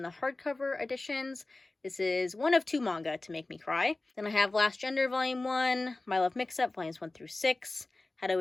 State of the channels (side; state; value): right; quieter; 3.0 dB